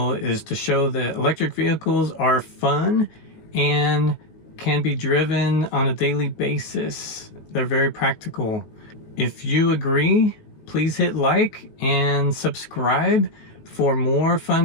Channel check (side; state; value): right; late; 19 ms